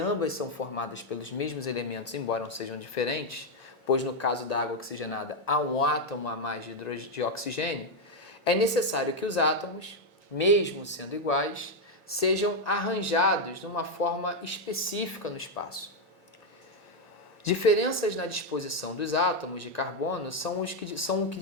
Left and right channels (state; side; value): normal; both; correlation 0.02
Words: são formadas pelos mesmos elementos, embora não sejam diferentes, pois no caso da água oxigenada há um átomo a mais de oxigênio, é necessário que os átomos, mesmo sendo iguais, sejam arranjados de uma forma específica no espaço. Diferenças na disposição dos átomos de carbono são o que